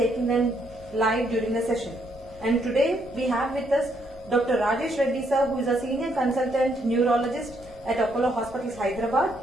them live during the session. And today we have with us Dr. Rajesh Reddy sir, who is a senior consultant neurologist at Apollo Hospitals, Hyderabad,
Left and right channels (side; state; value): both; normal; correlation 0.73